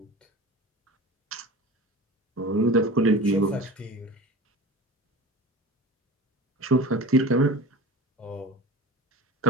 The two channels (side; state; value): both; normal; correlation 0.35